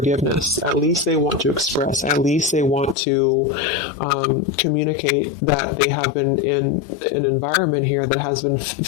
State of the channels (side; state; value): right; drops out; at 3.0 s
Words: At least they want to express, at least they want to communicate that they have been in an environment here that has been